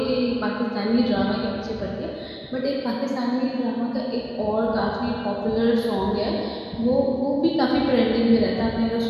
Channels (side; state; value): both; identical; correlation 1.00